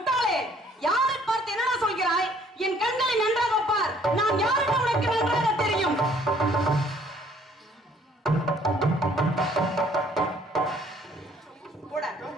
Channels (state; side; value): normal; both; correlation 0.60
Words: யாரை பார்த்து என்ன சொல்கிறாய்? என் கண்களை நன்றாக பார். நான் யார் என்று உனக்கு நன்றாக தெரியும்.